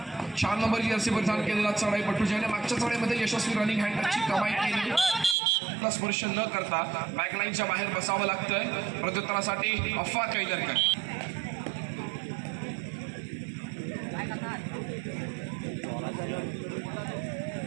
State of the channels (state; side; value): drops out; left; at 5.4 s